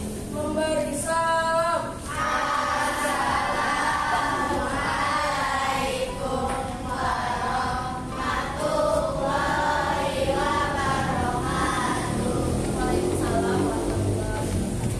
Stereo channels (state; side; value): identical; both; correlation 1.00